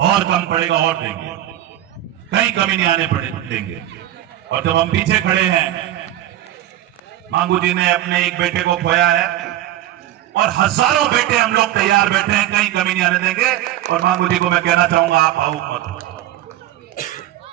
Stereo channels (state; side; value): quieter; left; 13.4 dB